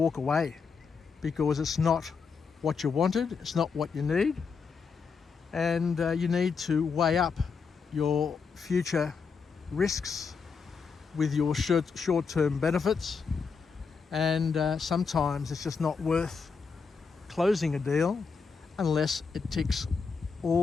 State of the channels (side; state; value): right; quieter; 5.4 dB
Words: away, because it's not what you wanted, it's not what you need. And you need to weigh up your future risks with your short-term benefits. And sometimes it's just not worth closing a deal unless it ticks